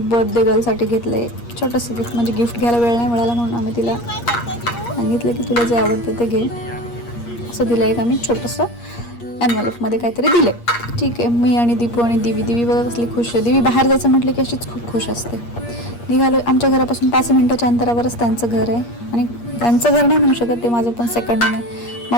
गर्लसाठी घेतलंय छोटंसं गिफ्ट. म्हणजे गिफ्ट घ्यायला वेळ नाही मिळाला म्हणून आम्ही तिला सांगितलं की तुला जे आवडतं ते घे. असं दिलं एक आम्ही छोटंसं एनव्हलपमध्ये काहीतरी दिले. ठीक आहे. मी आणि दीपू आणि दिवी बघा कसली खुश आहे. दिवी बाहेर जायचं म्हटलं की अशीच खूप खुश असते. निघालो. आमच्या घरापासून 5 मिनिटाच्या अंतरावरच त्यांचं घर आहे. आणि त्यांचं घर नाही म्हणू शकत, ते माझं पण सेकंड होम आहे.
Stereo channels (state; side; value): late; right; 8.5 ms